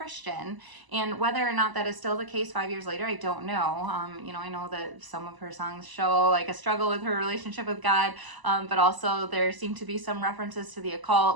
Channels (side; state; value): left; late; 1.0 ms